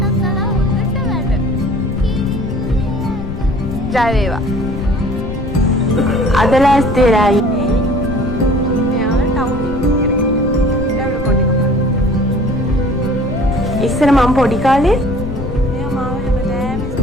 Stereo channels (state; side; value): noise; left; rumble, 6 dB below the sound